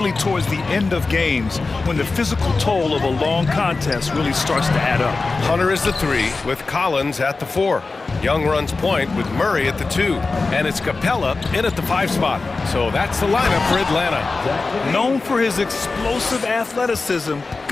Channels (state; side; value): quieter; right; 3.8 dB